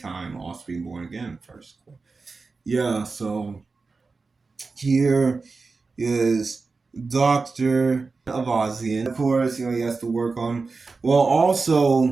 also being born again first. Yeah, so here is Dr. Avazian. Of course, he has to work on. Well,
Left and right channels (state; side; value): quieter; left; 4.2 dB